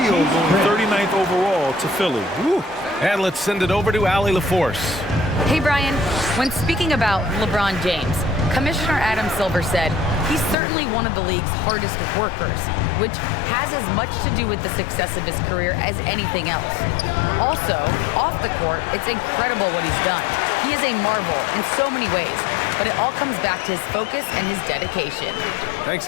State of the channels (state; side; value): drops out; right; at 10.6 s